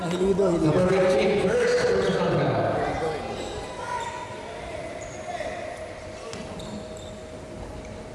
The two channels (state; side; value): identical; both; correlation 1.00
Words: Hilido, hilido. Number 15, first personal foul.